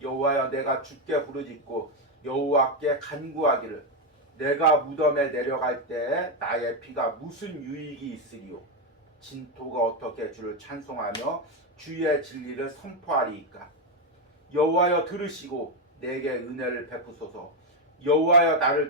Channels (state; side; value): normal; both; correlation 0.06